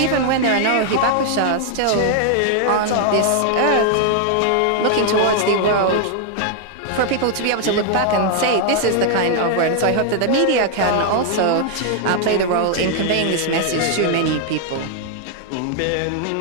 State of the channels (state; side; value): different; both; correlation 0.00